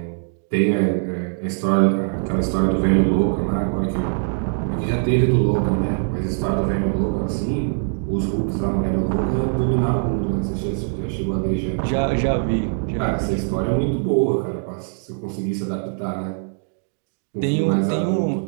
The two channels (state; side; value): silent; left; digital silence